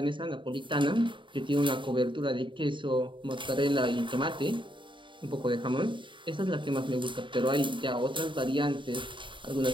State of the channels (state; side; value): late; left; 0.24 ms